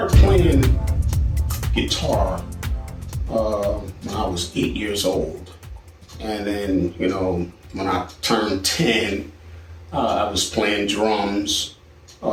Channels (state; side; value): identical; both; correlation 1.00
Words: playing guitar when I was 8 years old. And then, when I turned 10, I was playing drums.